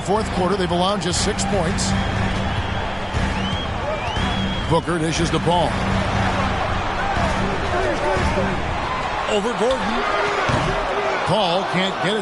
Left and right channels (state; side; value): identical; both; correlation 1.00